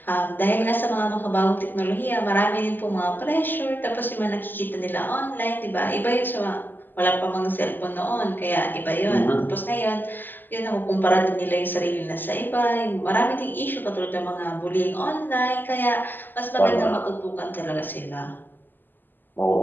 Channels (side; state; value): right; late; 0.091 ms